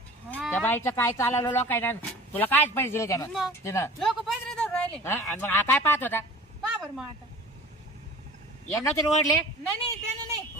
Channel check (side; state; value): both; normal; correlation 0.42